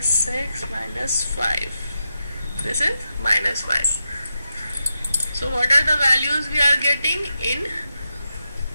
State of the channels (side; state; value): both; inverted; correlation -0.87